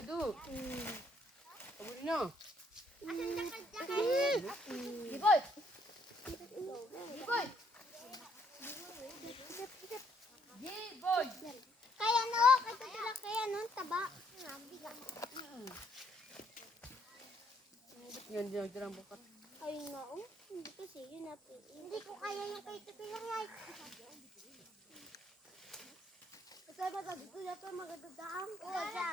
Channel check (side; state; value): both; normal; correlation 0.69